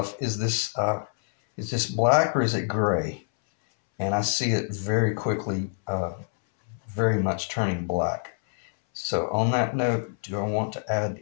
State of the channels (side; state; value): right; silent; 61 dB below the other